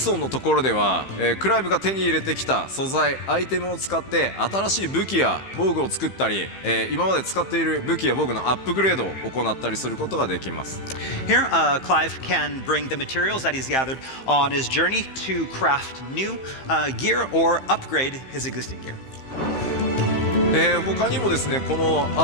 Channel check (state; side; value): late; right; 15 ms